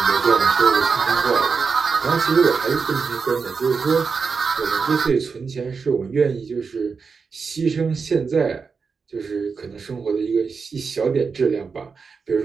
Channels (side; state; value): left; quieter; 5.2 dB